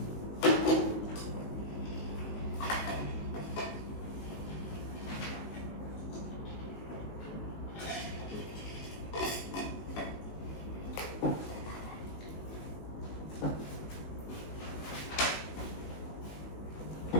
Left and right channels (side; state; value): right; late; 19 ms